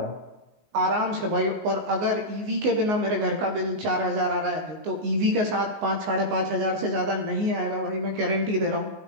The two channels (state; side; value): late; left; 19 ms